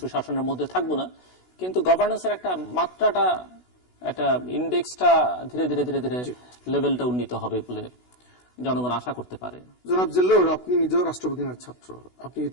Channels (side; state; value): right; late; 16 ms